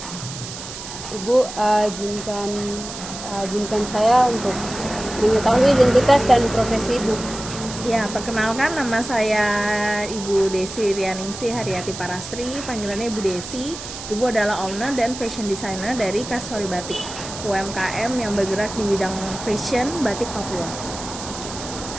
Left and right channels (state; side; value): noise; right; hiss, 10 dB below the sound